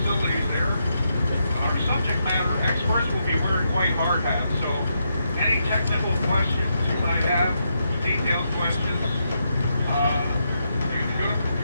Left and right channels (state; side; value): inverted; both; correlation -0.81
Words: Subject matter experts will be wearing white hard hats, so any technical questions you might have, detailed questions, you're going